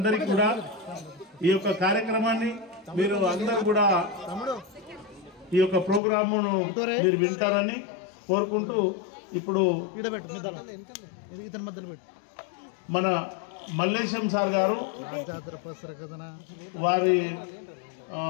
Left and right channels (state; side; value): drops out; right; at 6.0 s